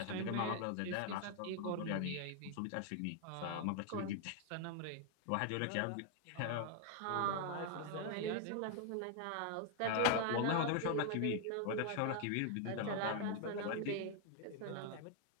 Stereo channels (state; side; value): different; both; correlation 0.00